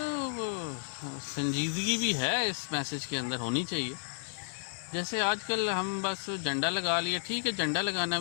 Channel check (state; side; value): silent; right; digital silence